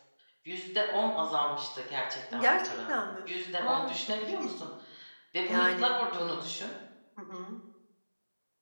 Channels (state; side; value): inverted; both; correlation -1.00